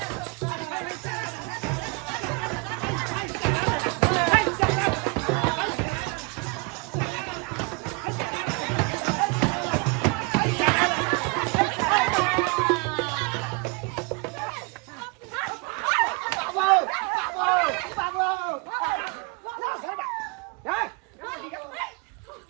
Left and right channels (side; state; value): left; quieter; 29.9 dB